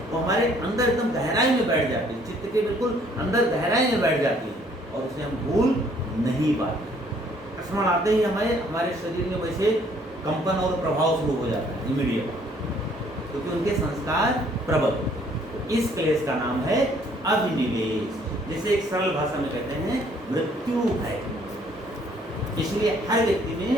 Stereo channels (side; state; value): both; normal; correlation 0.62